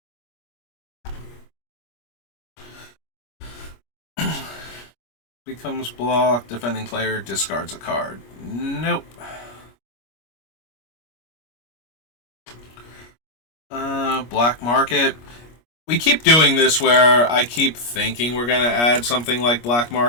Becomes blocked, defending player discards a card. Nope. Black Market. We keep doing this where I keep thinking we're going to add something like Black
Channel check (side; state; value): right; late; 25 ms